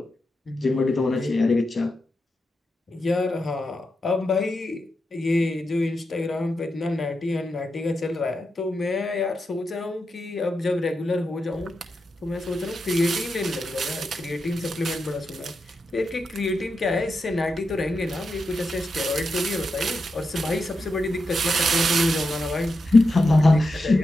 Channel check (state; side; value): normal; both; correlation 0.87